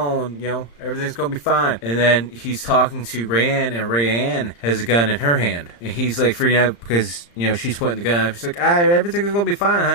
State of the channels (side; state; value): right; late; 35 ms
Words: everything's gonna be fine. And then he's talking to Rayanne, and Rayanne has a gun in her hand, and he's like freaking out because she's pointing the gun up. He's like, everything's gonna be fine,